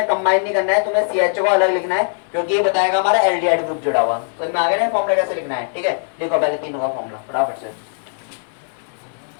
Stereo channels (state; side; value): silent; right; digital silence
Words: कंबाइन नहीं करना है, तुम्हें CHO को अलग लिखना है, क्योंकि ये बताएगा हमारा एल्डिहाइड ग्रुप जुड़ा हुआ। समझ में आ गया ना फॉर्मूला कैसे लिखना है, ठीक है। देखो पहले तीनों का फॉर्मूला फटाफट से,